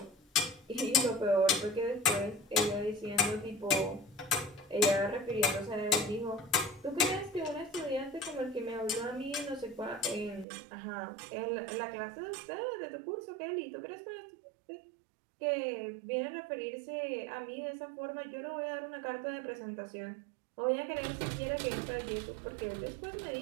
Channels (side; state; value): left; drops out; at 10.5 s